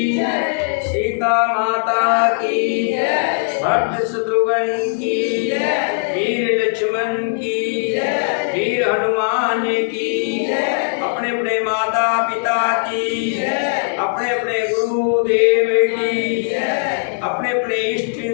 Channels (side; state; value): right; silent; digital silence